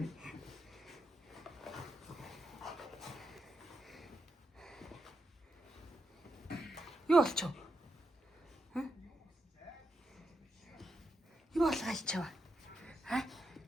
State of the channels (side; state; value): both; normal; correlation 0.85